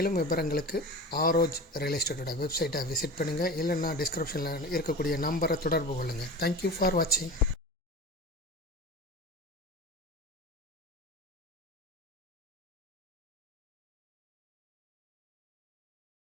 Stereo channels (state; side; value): normal; both; correlation 0.33